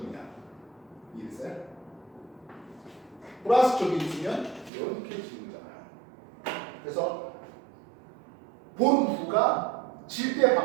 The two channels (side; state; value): left; drops out; at 4.7 s